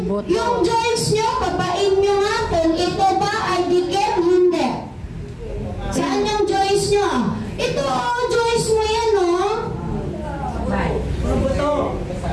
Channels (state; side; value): identical; both; correlation 1.00